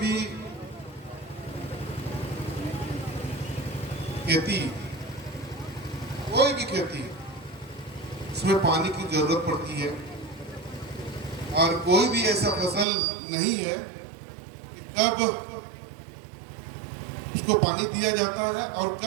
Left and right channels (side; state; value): left; drops out; at 12.9 s